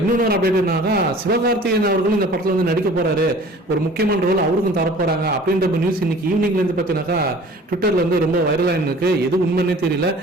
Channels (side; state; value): both; normal; correlation 0.47